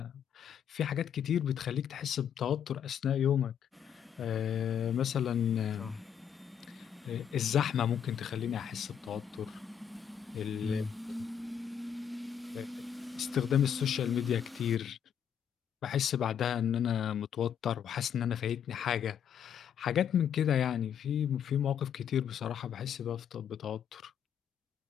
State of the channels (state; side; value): quieter; right; 8.6 dB